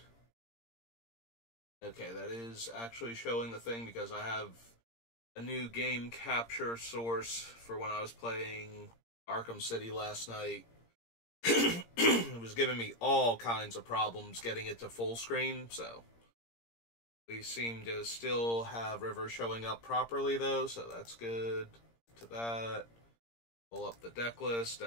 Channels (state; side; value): late; right; 17 ms